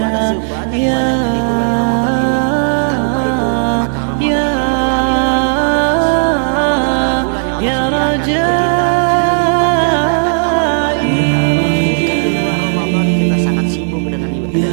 sebanyak-banyaknya di bulan Ramadan ini. Tanpa itu, maka Ramadan akan berlalu tanpa bekas. Ramadan adalah bulan yang Allah sediakan untuk kita melipat gandakan amal ibadah kita. Mungkin di luar Ramadan kita sangat sibuk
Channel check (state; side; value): silent; left; digital silence